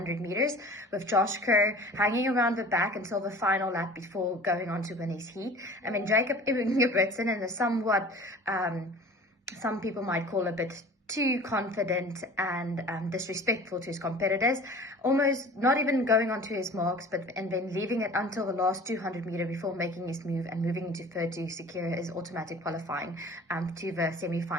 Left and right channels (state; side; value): normal; both; correlation 0.43